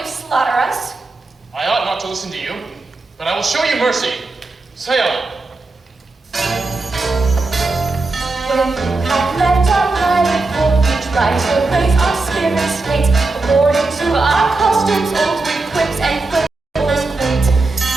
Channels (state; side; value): quieter; left; 3.5 dB